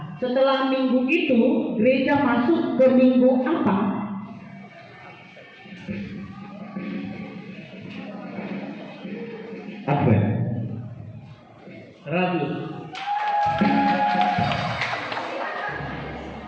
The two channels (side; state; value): both; identical; correlation 1.00